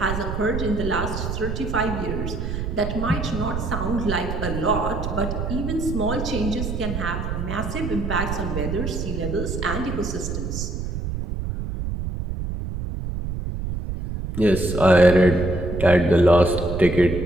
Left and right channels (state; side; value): noise; right; rumble, 4 dB below the sound